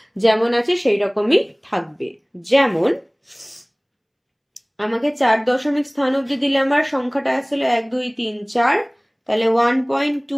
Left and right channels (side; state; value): both; identical; correlation 1.00